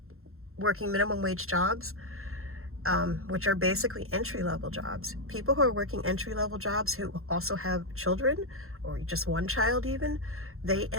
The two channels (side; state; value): left; late; 0.62 ms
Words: working minimum wage jobs, which are basically entry-level jobs. People who are working entry-level jobs who also have children, or just one child even, they